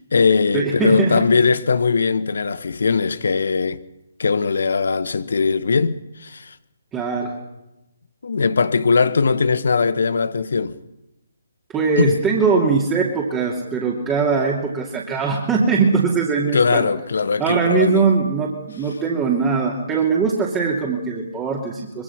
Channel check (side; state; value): both; inverted; correlation -0.55